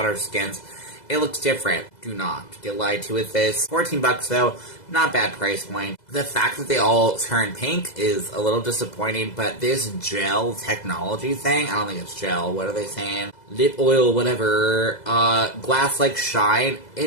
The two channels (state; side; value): late; right; 2.0 ms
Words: our skins. It looks different. Do not get lied to with this. $14 though, not bad price point. The fact that they all turn pink is a little disappointing, but this gel technology thing, I don't think it's gel, what are they saying? Lip oil, whatever, glass-like shine,